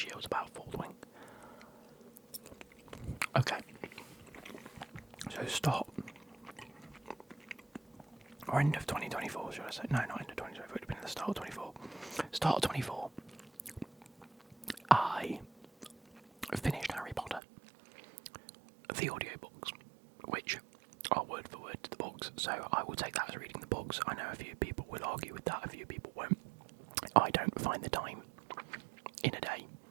year was about Foldwing. Okay. So start... Or end of 2024, should I say? No, not end of 2024, it would have been at the start of 24. Start of 24, I finished Harry Potter, the audiobooks, which are word for word to the books, so I will take that as reading the books. I know a few people will argue with that, a few people won't. I don't find the time in a day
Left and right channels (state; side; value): drops out; left; at 17.4 s